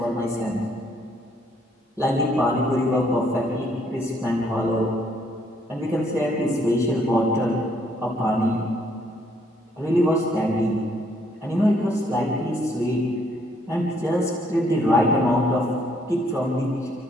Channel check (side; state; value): both; normal; correlation 0.68